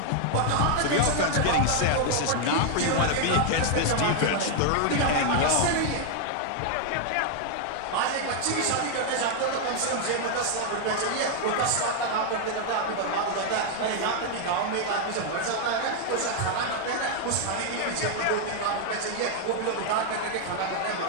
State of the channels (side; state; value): both; different; correlation 0.00